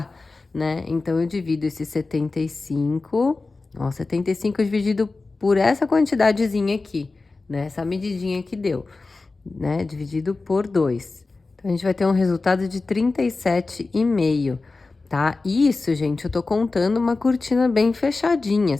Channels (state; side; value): quieter; right; 3.7 dB